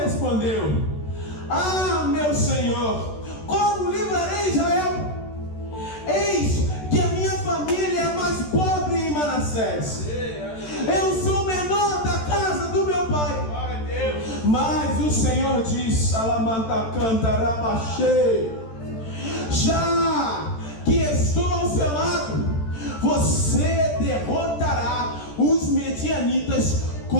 ah, meu Senhor, como livrarei Israel? Eis que a minha família é mais pobre em Manassés. Eu sou o menor da casa do meu pai. Mas o Senhor diz: Alamanta canta rabaxê, já que estou ao seu lado, você derrotará os medianitas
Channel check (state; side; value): late; right; 13 ms